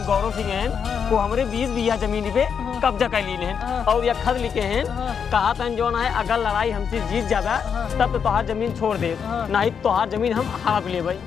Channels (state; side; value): quieter; right; 7.0 dB